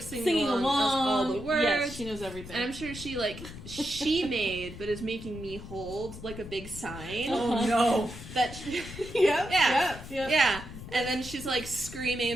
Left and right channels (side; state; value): left; noise; rumble, 13 dB below the sound